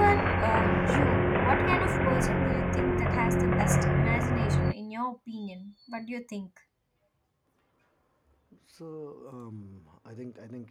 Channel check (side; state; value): both; identical; correlation 1.00